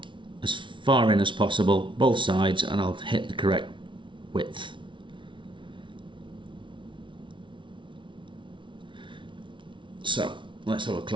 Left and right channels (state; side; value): late; left; 0.24 ms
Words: as far in as possible, both sides, and I'll hit the correct width. So let's have a